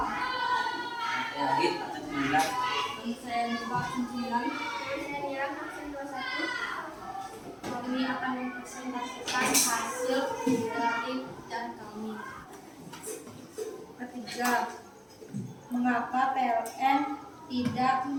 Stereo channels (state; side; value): identical; both; correlation 1.00